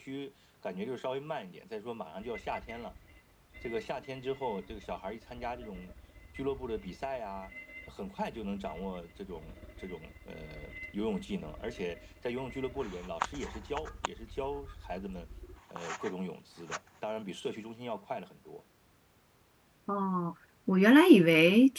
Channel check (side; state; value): both; identical; correlation 1.00